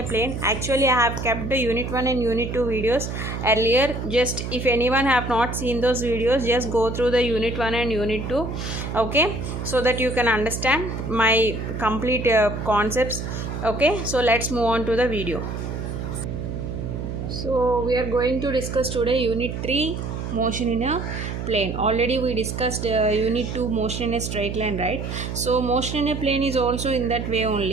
plane. Actually I have kept the Unit 1 and Unit 2 videos earlier. Just if anyone have not seen those videos, just go through the Unit 1 and Unit 2, okay, so that you can understand my complete concepts. Okay, so let's move on to the video. So we are going to discuss today Unit 3 motion in a plane. Already we discussed Unit 2 motion in a straight line, right? So motion in a plane is also in that way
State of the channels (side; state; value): right; noise; hum, 5 dB below the sound